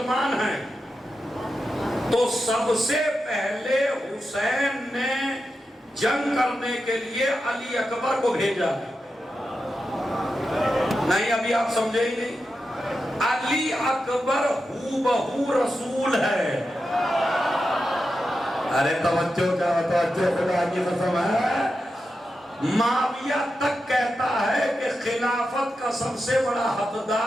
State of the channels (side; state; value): both; normal; correlation 0.89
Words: ہیں، تو سب سے پہلے حسین نے جنگ کرنے کے لیے علی اکبر کو بھیجا۔ نہیں ابھی آپ سمجھے ہی نہیں، علی اکبر ہو بہو رسول ہے۔ ارے توجہ کیا توجہ، خدا کی قسم ہے۔ معاویہ تک کہتا ہے کہ خلافت کا سب سے بڑا